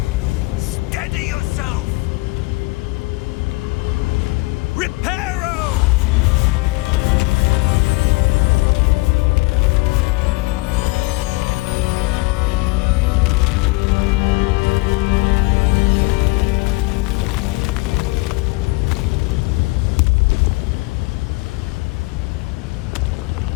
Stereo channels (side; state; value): right; quieter; 24.9 dB